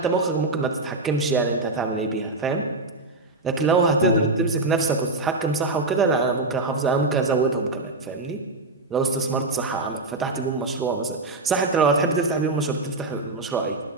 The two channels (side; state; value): left; quieter; 3.2 dB